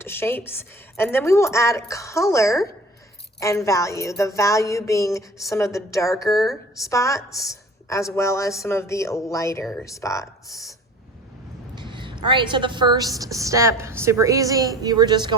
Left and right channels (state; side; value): normal; both; correlation 0.43